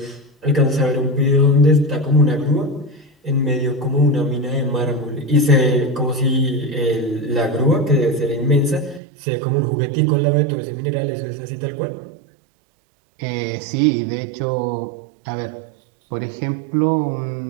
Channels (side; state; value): left; drops out; at 9.0 s